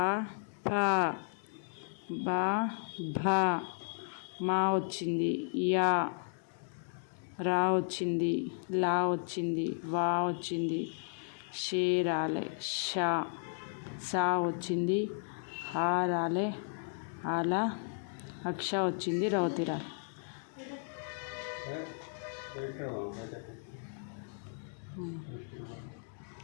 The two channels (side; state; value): right; silent; digital silence